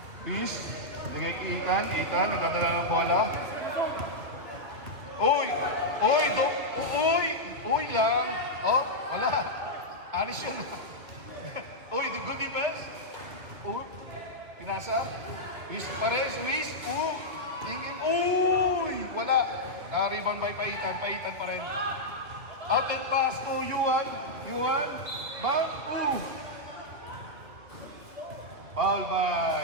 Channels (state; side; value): late; left; 2.2 ms